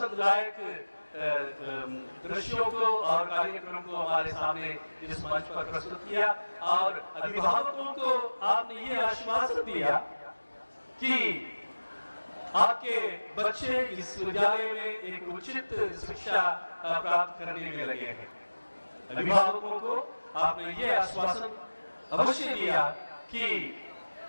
लायक दृश्यों को और कार्यक्रम को हमारे सामने इस मंच पर प्रस्तुत किया और अभिभावकों को आपने ये आश्वासन दिया कि आपके बच्चे इस विद्यालय में एक उचित शिक्षा प्राप्त करने में लगे हैं। अभिभावकों को आपने ये आश्वासन अवश्य दिया कि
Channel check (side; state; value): both; inverted; correlation -1.00